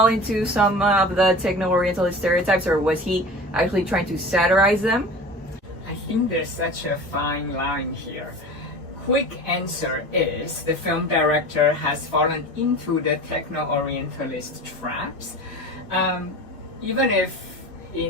into some of the Techno-Orientalist stereotypes, or was he actually trying to satirize them? I think there's such a fine line here. Quick answer is the film director has fallen into the Techno-Orientalist traps. Even if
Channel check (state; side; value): normal; both; correlation 0.36